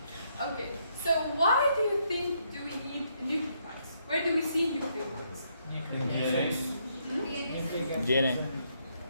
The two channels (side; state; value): both; inverted; correlation -0.74